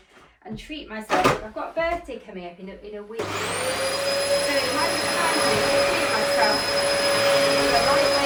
and treat myself. I've got a birthday coming up in a week, so it might be time for me to treat myself with a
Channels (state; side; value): identical; both; correlation 1.00